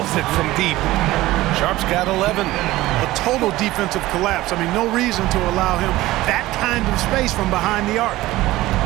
it from deep. Sharp's got 11. A total defensive collapse. I mean, no reason to allow him that kind of space from behind the arc.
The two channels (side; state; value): left; quieter; 17.3 dB